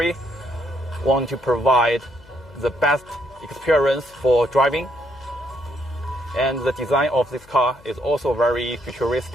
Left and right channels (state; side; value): noise; left; hum, 25 dB below the sound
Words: want to provide the best experience for driving. And the design of this car is also very